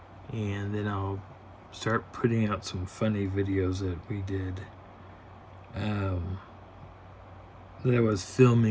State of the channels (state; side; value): identical; both; correlation 1.00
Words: and then I'll start putting out some funny videos that we did that I was